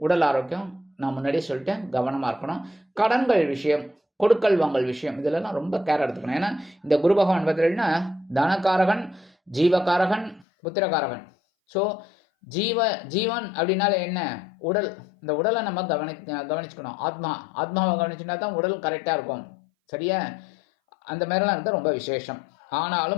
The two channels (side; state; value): right; drops out; at 10.5 s